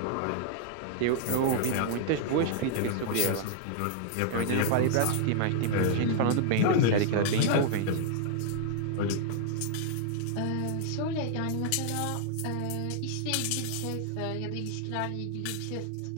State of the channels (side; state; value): both; different; correlation -0.01